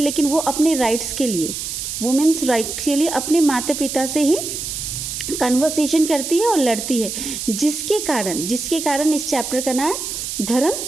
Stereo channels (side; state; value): right; noise; hiss, 5 dB below the sound